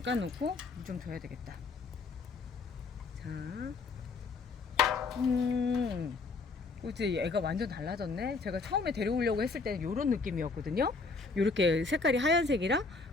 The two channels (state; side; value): quieter; right; 4.1 dB